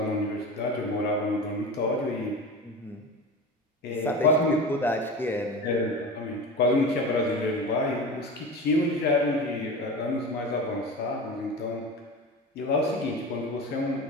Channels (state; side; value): normal; both; correlation 0.30